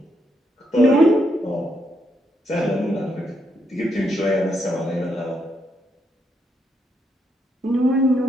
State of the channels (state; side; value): normal; both; correlation 0.78